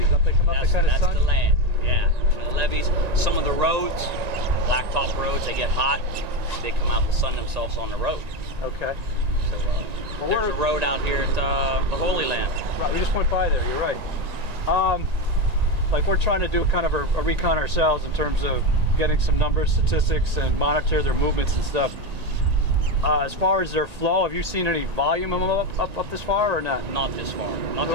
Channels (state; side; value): late; left; 1.9 ms